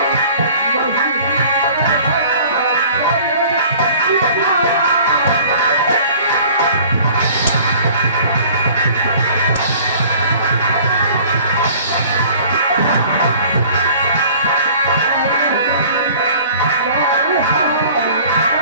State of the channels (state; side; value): inverted; both; correlation -0.49